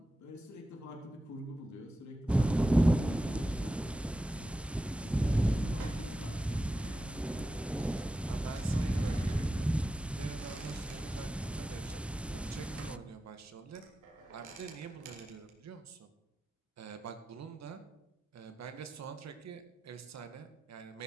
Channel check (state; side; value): normal; both; correlation 0.92